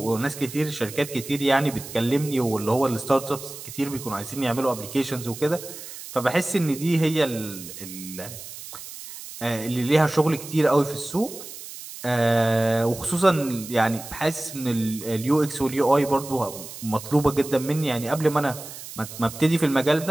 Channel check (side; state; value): right; noise; hiss, 13 dB below the sound